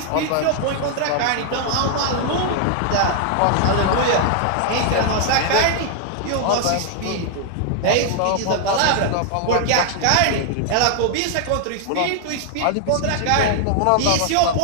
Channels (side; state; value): both; different; correlation 0.00